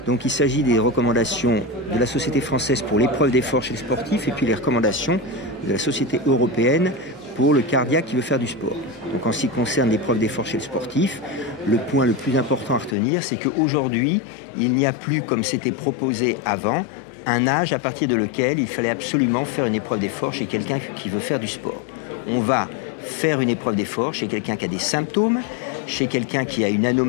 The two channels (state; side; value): drops out; right; at 13.0 s